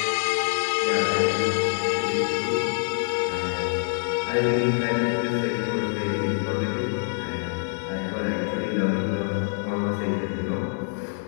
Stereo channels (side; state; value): right; silent; digital silence